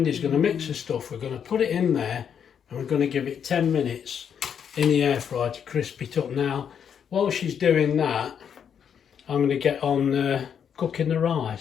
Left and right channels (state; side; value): quieter; right; 7.9 dB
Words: going to mix the stuff, we're going to put it in there and we're going to give it 10 minutes in the air fryer to crisp it up. Now, while she's doing that, I'm going to get on cooking the